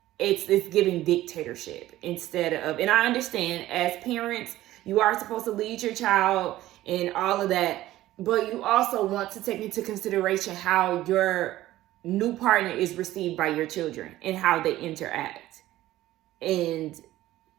giving dictatorship instead of, and I understand as parents, you are supposed to lead your child and all of that, but you also want to take into consideration how your new partner is received by your children and how they interact. And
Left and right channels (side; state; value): left; quieter; 15.2 dB